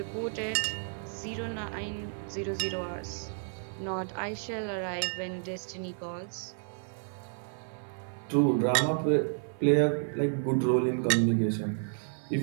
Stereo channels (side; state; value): left; silent; 55 dB below the other